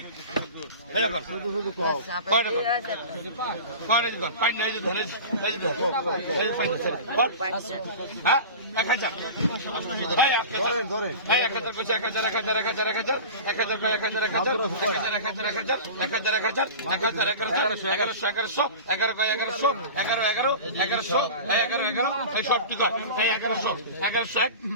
এটা কর শুধু কও কয়টা কর কয়টা কর পাই না এই যে ধরে এই যে এই যে পাই না কর হ্যাঁ 1000 ভাই ধরে এই 1000 কইছে 1000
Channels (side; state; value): both; inverted; correlation -0.33